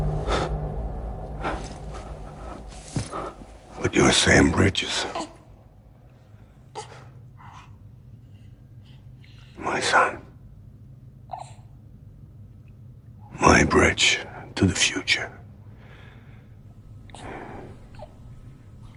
But you're Sam Bridges. My son. My bridge to the future.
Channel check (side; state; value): both; identical; correlation 1.00